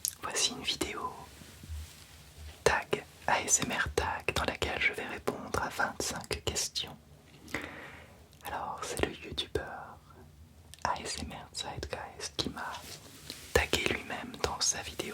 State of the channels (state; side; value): identical; both; correlation 1.00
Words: voici une vidéo tag, ASMR tag, dans laquelle je vais répondre à 25 questions. Alors c'est le youtubeur ASMR Zeitgeist qui m'a tagué lui-même dans sa